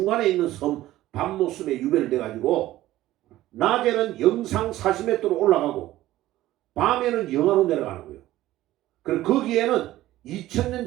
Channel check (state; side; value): quieter; left; 15.3 dB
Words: 있는 섬 밤모섬에 유배를 돼가지고 낮에는 영상 40m로 올라가고 밤에는 영하로 내려가는 거예요. 그리고 거기에는 2000년